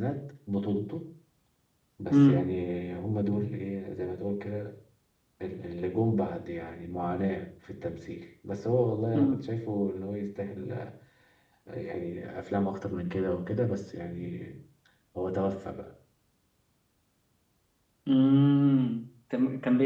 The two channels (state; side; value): identical; both; correlation 1.00